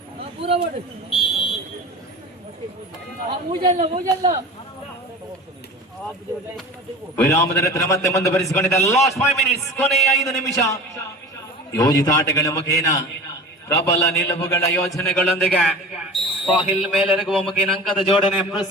ವಿರಾಮದ ನಂತರ ಮತ್ತೆ ಮುಂದುವರಿಸಿಕೊಂಡಿದೆ. ಲಾಸ್ಟ್ 5 ಮಿನಿಟ್ಸ್, ಕೊನೆಯ 5 ನಿಮಿಷ. ಯೋಜಿತ ಆಟಗಳ ಮುಖೇನ ಪ್ರಬಲ ನಿಲುವುಗಳ ಯೋಜನೆಗಳೊಂದಿಗೆ ಸಾಹಿಲ್ ಮೇಲೆರಗುವ ಮುಖೇನ ಅಂಕದ ಜೋಡಣೆ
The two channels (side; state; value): both; normal; correlation 0.35